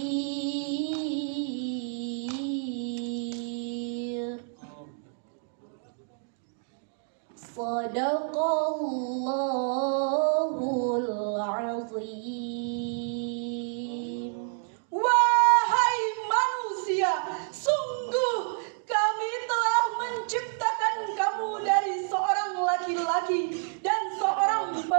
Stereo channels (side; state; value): left; silent; 59 dB below the other